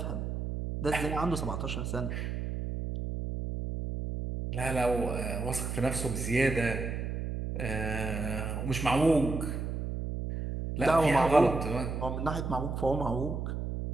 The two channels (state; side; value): noise; right; hum, 3 dB below the sound